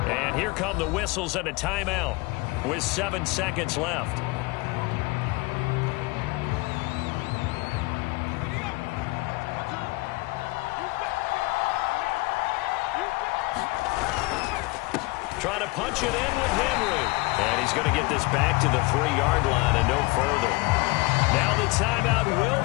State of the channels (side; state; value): right; quieter; 23.7 dB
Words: And here come the whistles and a timeout with 7 seconds left. Trying to punch it in with Henry. And he's going to get this back to the 3-yard line and no further. Now the timeout